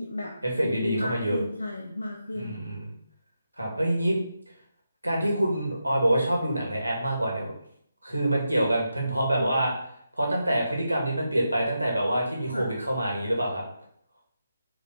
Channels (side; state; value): both; inverted; correlation -0.86